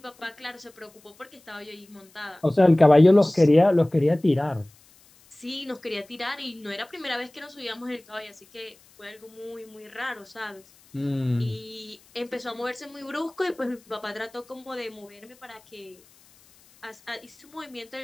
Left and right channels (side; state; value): left; noise; hiss, 28 dB below the sound